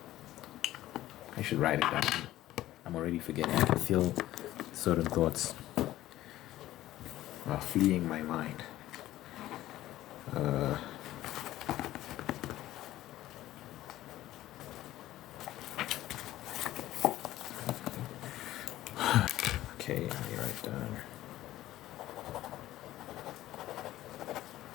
I should write it down. I'm already forgetting. I can feel certain thoughts fleeing my mind. Okay, let me write down.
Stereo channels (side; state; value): right; quieter; 14.8 dB